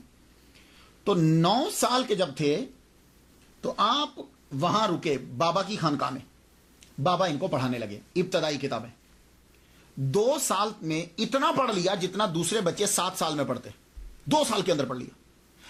تو 9 سال کے جب تھے تو آپ وہاں رکے بابا کی خانقاہ میں، بابا ان کو پڑھانے لگے ابتدائی کتابیں۔ 2 سال میں اتنا پڑھ لیا جتنا دوسرے بچے 7 سال میں پڑھتے، 2 سال کے اندر پڑھ لیا۔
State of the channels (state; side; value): identical; both; correlation 1.00